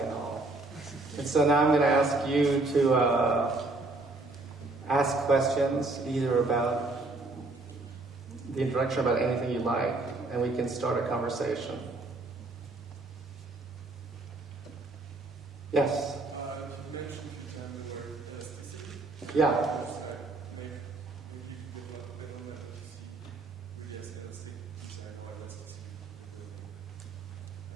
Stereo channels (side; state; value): left; quieter; 3.2 dB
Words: all. And so now I'm going to ask you to ask questions, either about the introduction, about anything you like, and we can start a conversation. Yes? You mentioned the word specific. Yeah.